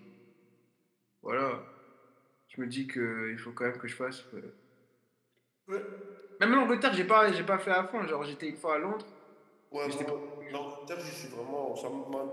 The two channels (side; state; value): both; identical; correlation 1.00